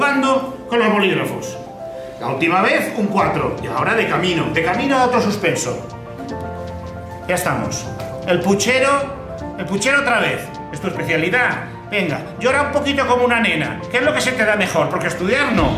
con los bolígrafos. La última vez un 4 y ahora de camino a otro suspenso. Ya estamos. El puchero otra vez. ¿Es tu especialidad? Venga, llora un poquito como una nena. ¿Qué es lo que se te da mejor? Porque estudiar no.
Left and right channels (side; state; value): both; identical; correlation 1.00